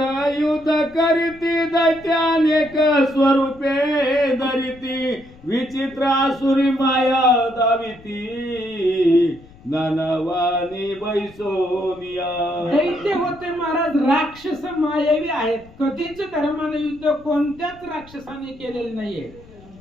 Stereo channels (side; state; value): left; noise; rumble, 23 dB below the sound